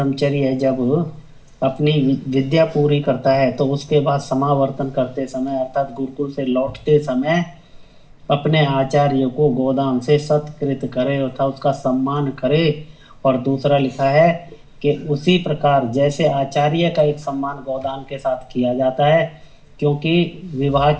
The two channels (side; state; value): both; identical; correlation 1.00